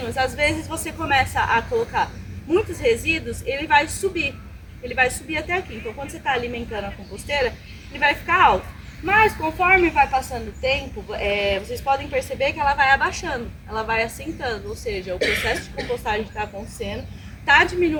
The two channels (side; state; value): both; identical; correlation 1.00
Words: às vezes você começa a colocar muitos resíduos, ele vai subir até aqui. Então, quando você está alimentando a composteira, ele vai ficar alto. Mas conforme vai passando o tempo, vocês podem perceber que ela vai abaixando, ela vai assentando, ou seja, o processo de compostagem está acontecendo, está